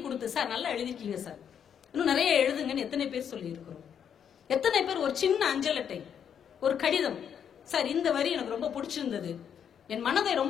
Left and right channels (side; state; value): right; quieter; 8.2 dB